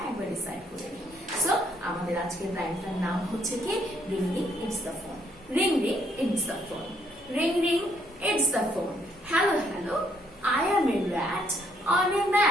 একবার রিসাইট করে নিই। সো আমাদের আজকের লাইনটার নাম হচ্ছে কি? Ring ring it's the phone. Ring ring it's the phone. Ring ring it's the phone. Hello, hello, I am a rat on a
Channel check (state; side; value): normal; both; correlation 0.70